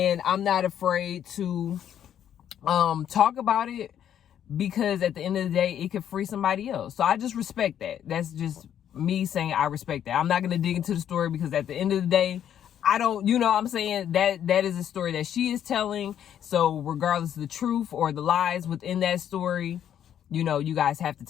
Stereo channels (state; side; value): quieter; right; 9.8 dB